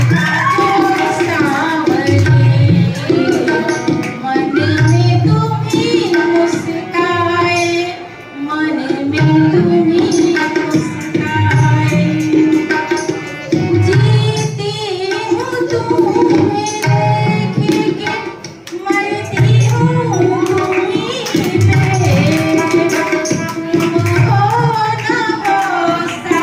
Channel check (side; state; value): both; identical; correlation 1.00